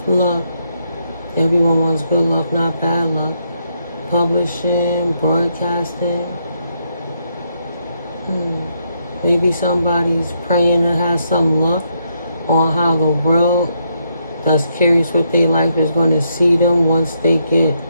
Luck, everyone wants good luck, not bad luck. Publishing, broadcasting. Maybe somebody's praying to have some luck on how the world that's curious what their life is going to see them once they get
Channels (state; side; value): inverted; both; correlation -0.78